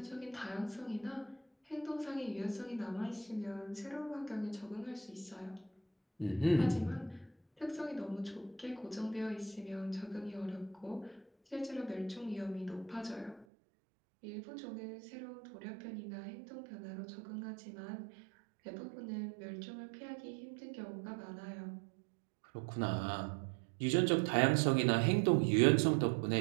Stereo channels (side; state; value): left; drops out; at 13.5 s